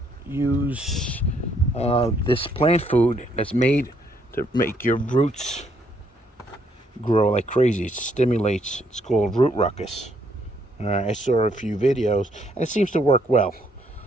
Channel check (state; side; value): normal; both; correlation 0.70